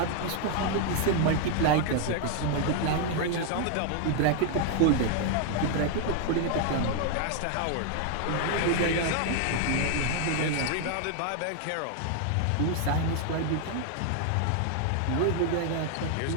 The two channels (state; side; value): different; both; correlation 0.00